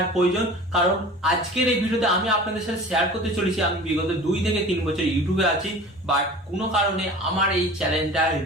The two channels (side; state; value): both; normal; correlation 0.40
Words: প্রয়োজন। কারণ আজকের এই ভিডিওতে আমি আপনাদের সাথে শেয়ার করতে চলেছি আমি বিগত 2 থেকে 3 বছর ইউটিউবে আছি, বাট কোনো কারণে আমার এই চ্যানেলটা